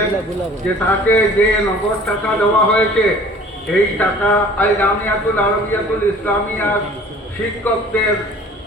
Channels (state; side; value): normal; both; correlation 0.49